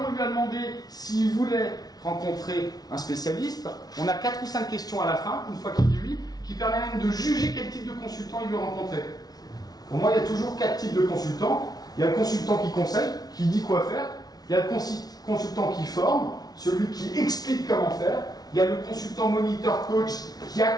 on lui a demandé s'il voulait rencontrer un spécialiste, on a 4 ou 5 questions à la fin, une fois qu'il dit oui, qui permet même de juger quel type de consultant il veut rencontrer. Pour moi, il y a toujours 4 types de consultants. Il y a le consultant qui conseille, qui dit quoi faire. Il y a le consultant qui forme, celui qui explique comment faire. Il y a le consultant moniteur coach qui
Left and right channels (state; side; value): late; right; 0.19 ms